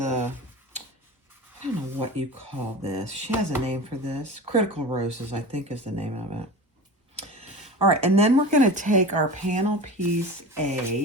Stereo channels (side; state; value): both; normal; correlation 0.33